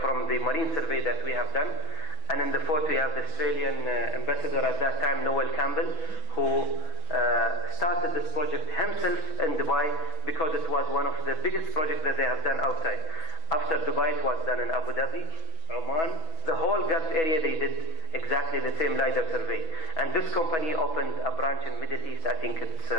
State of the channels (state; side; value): late; right; 6.2 ms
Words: the marine survey that we have done. And in the photo you have the Australian ambassador at that time, Noel Campbell, who started this project himself in Dubai because it was one of the biggest projects that they have done outside. After Dubai, it was done in Abu Dhabi, Oman, the whole Gulf area. They did exactly the same LiDAR survey. And this company opened a branch in Middle East. I think